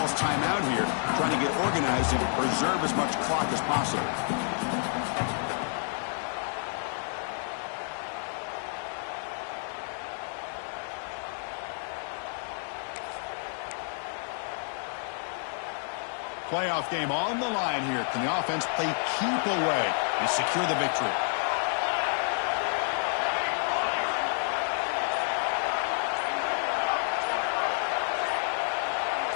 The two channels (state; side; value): silent; right; 58 dB below the other